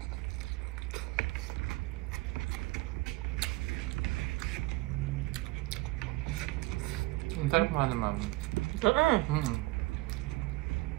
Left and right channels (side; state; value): left; quieter; 20.9 dB